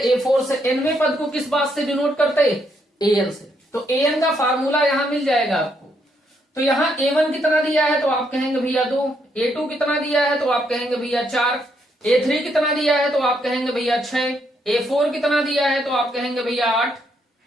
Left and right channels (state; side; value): normal; both; correlation 0.75